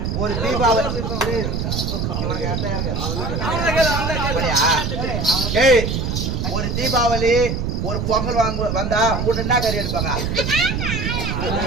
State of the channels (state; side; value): noise; right; rumble, 1 dB below the sound